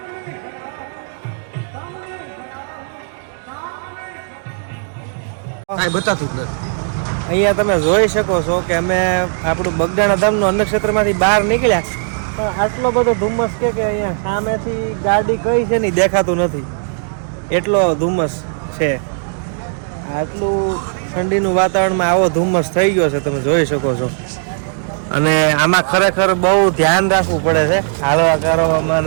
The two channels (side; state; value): left; silent; digital silence